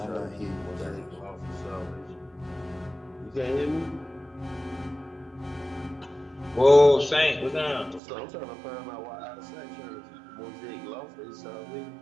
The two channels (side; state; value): left; drops out; at 8.0 s